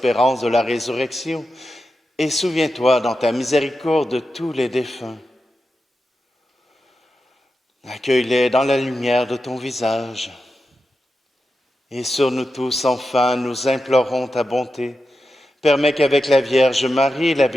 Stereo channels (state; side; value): normal; both; correlation 0.90